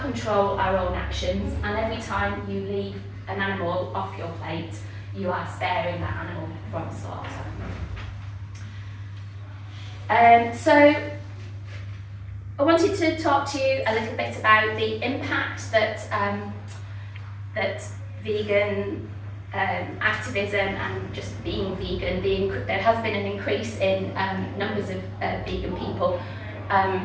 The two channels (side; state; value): both; identical; correlation 1.00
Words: our own actions, and every time you leave an animal off your plate, you are sparing that animal from slaughter. So I wanted to talk to you a little bit about the impact that that vegan activism and just being vegan, there has been an increase in numbers of vegan people.